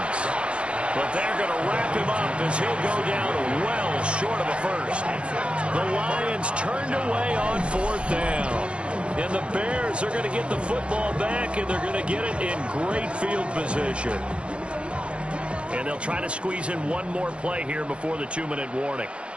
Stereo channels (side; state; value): left; late; 0.058 ms